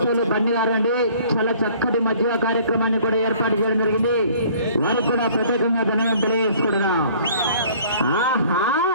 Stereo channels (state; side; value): inverted; both; correlation -0.54